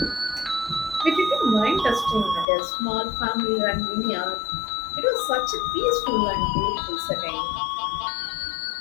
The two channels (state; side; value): drops out; right; at 2.5 s